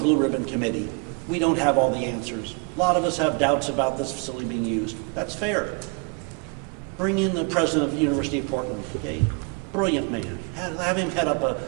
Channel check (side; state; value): left; quieter; 34.1 dB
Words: ribbon committee. We don't have all the answers. A lot of us have doubts about this facility being used. That's fair. Bring in the president of the University of Portland, okay? Brilliant man. Have him head up